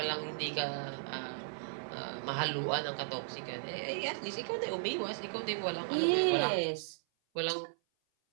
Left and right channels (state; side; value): silent; left; 54 dB below the other